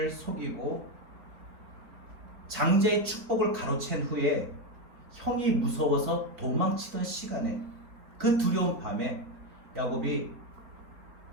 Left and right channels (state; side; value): late; left; 4.4 ms